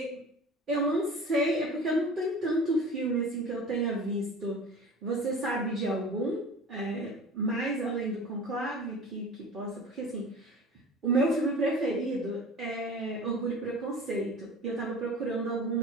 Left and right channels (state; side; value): normal; both; correlation 0.39